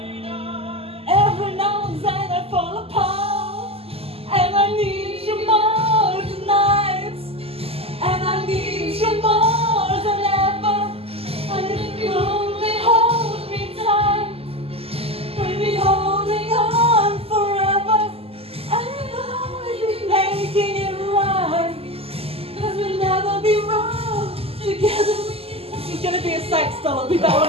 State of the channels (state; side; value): late; left; 0.28 ms